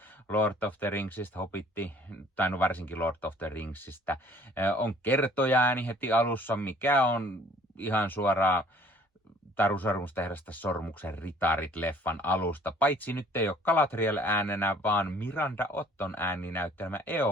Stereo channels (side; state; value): both; normal; correlation 0.55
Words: Lord of the Ringsista, Hobbitti, tai no varsinkin Lord of the Ringsistä. On kertojaääni heti alussa, mikä on ihan suoraan Taru Sormusten herrasta Sormuksen ritarit-leffan alusta. Paitsi nyt ei ole Galadriel äänenä, vaan Miranda Otton ääni näyttelemä